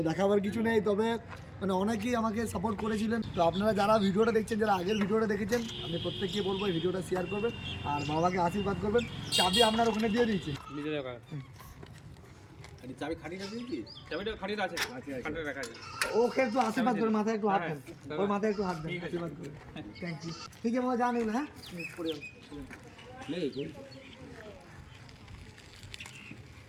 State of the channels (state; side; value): identical; both; correlation 1.00